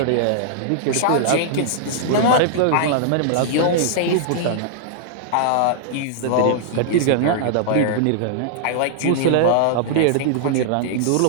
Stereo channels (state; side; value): different; both; correlation -0.01